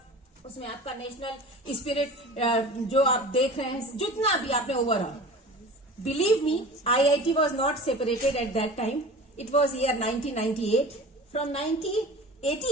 उसमें आपका नेशनल स्पिरिट जो आप देख रहे हैं, जितना भी आपने overall. Believe me, IIT was not separated at that time, it was year 1998। From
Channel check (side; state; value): both; normal; correlation 0.38